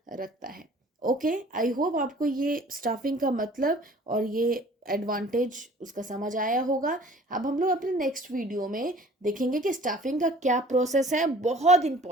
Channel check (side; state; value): both; normal; correlation 0.50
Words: रखता है। ओके, आई होप आपको ये स्टाफिंग का मतलब और ये एडवांटेज उसका समझ आया होगा। अब हम लोग अपने नेक्स्ट वीडियो में देखेंगे कि स्टाफिंग का क्या प्रोसेस है। बहुत